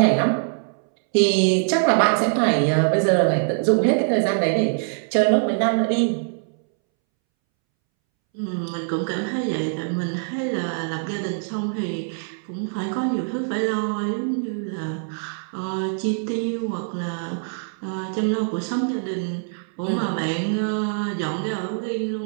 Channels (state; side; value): silent; left; 63 dB below the other